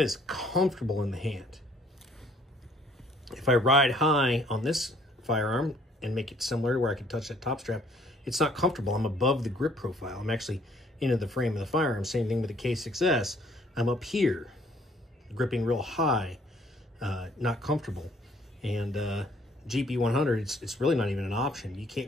comfortable in the hand. If I ride high on this firearm and make it similar to where I can touch that top strap, it's not comfortable. I'm above the grip profile. I'm actually into the frame of the firearm. Same thing with the K6S. I'm up here, gripping real high, not comfortable. And GP100, it's really not even an option. You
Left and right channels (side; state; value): both; normal; correlation 0.61